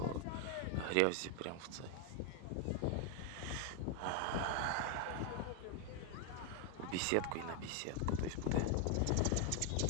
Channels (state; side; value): different; both; correlation 0.01